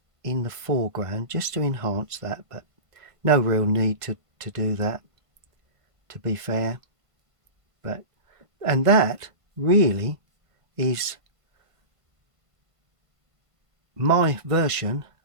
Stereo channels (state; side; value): late; left; 1.5 ms